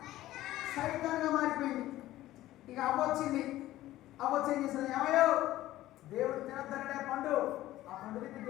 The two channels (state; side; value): quieter; right; 15.2 dB